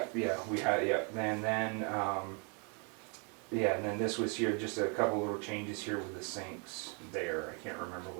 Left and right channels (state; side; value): quieter; left; 35.8 dB